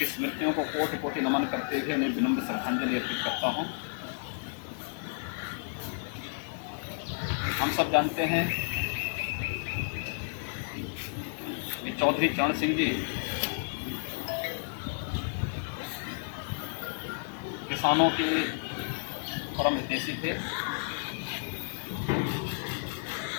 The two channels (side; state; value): right; silent; 57 dB below the other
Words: स्मृतियों को कोटि कोटि नमन करते हुए उन्हें विनम्र श्रद्धांजलि अर्पित करता हूं। हम सब जानते हैं कि चौधरी चरण सिंह जी किसानों के परम हितैषी थे।